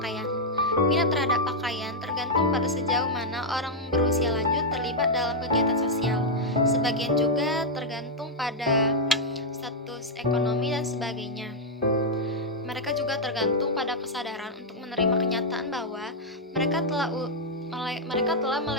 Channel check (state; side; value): normal; both; correlation -0.03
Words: Minat terhadap pakaian tergantung pada sejauh mana orang berusia lanjut terlibat dalam kegiatan sosial. Sebagian juga tergantung pada status ekonomi dan sebagainya. Mereka juga tergantung tergantung pada kesadaran untuk menerima kenyataan bahwa mereka telah